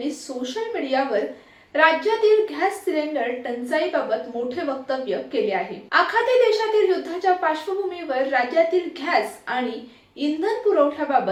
सोशल मीडियावर राज्यातील गॅस सिलेंडर टंचाईबाबत मोठे वक्तव्य केले आहे। आखाती देशातील युद्धाच्या पार्श्वभूमीवर राज्यातील गॅस आणि इंधन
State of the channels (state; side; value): identical; both; correlation 1.00